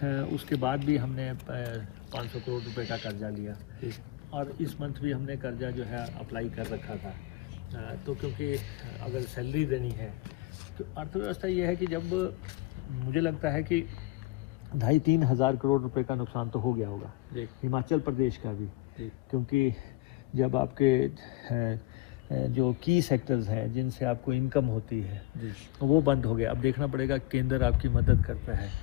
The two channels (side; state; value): right; quieter; 18.6 dB